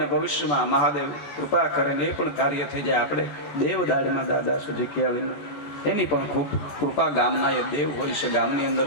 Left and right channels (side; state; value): right; late; 14 ms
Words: ભવિષ્યમાં મહાદેવ કૃપા કરીને એ પણ કાર્ય થઈ જાય. આપણે દેવ દાઢમાં દાદા છે જીક્યાળીનું, એની પણ ખૂબ કૃપા. ગામના એ દેવ હોય છે. ગામની અંદર